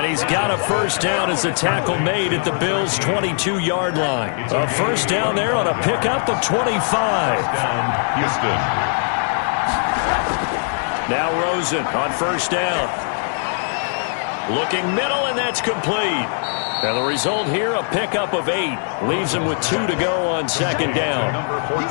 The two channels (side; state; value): right; silent; 65 dB below the other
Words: he's got a first down as the tackle made at the Bills' 22-yard line. A first down there on a pickup of 25. Down, Houston. Now Rosen on first down. Looking middle, and that's complete. And the result here, a pickup of 8. Leaves him with 2 to go on second down. Number 14.